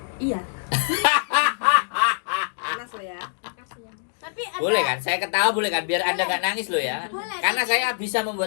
Iya. Panas lo ya. makasih ya. Tapi ada, Boleh kan? Saya ketawa boleh kan? Biar Anda nggak nangis loh ya. Boleh. Karena saya bisa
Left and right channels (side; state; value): right; silent; digital silence